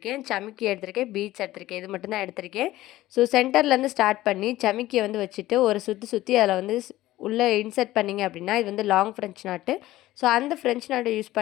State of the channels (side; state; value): right; quieter; 15.9 dB